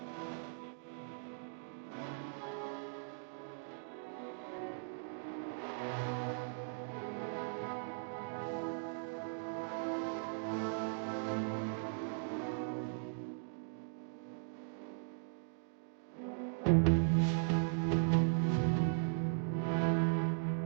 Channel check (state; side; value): silent; left; digital silence